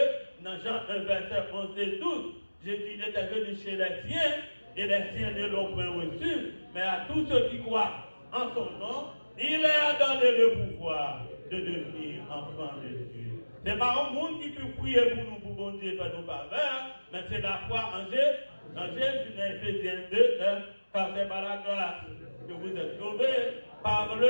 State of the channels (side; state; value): both; inverted; correlation -1.00